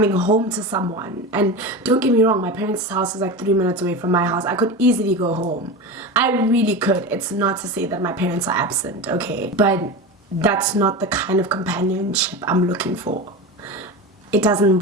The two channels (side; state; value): both; normal; correlation 0.25